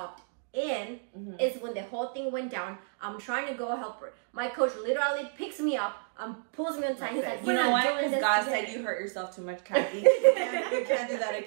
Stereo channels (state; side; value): silent; left; digital silence